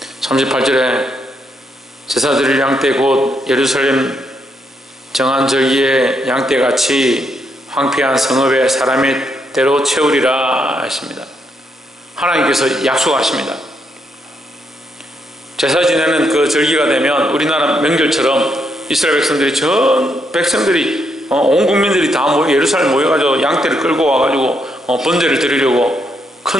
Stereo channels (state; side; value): normal; both; correlation 0.77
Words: 38절에 제사 드릴 양떼 곧 예루살렘 정한 절기의 양떼같이 황폐한 성읍에 사람의 대로 채우리라 하십니다. 하나님께서 약속하십니다. 제사 지내는 그 절기가 되면 우리나라 명절처럼 이스라엘 백성들이 온 국민들이 다 예루살렘 모여가지고 양떼를 끌고 와가지고 번제를 드리려고